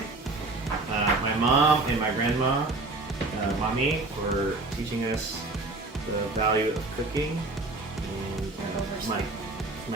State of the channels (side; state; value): left; quieter; 3.2 dB